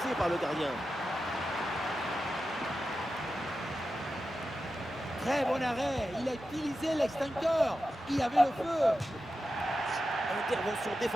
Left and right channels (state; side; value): normal; both; correlation 0.91